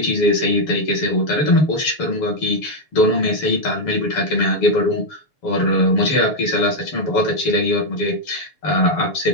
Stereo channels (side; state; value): right; late; 7.0 ms